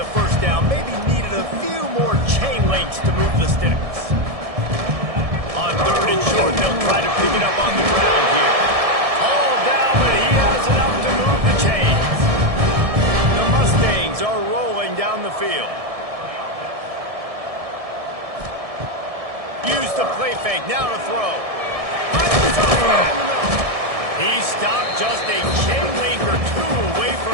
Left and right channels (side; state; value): left; late; 1.7 ms